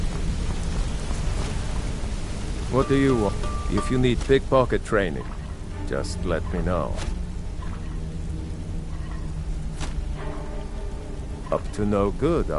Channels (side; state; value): both; identical; correlation 1.00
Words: What do you want? If you need pickpocket training, just let me know. Up to no good,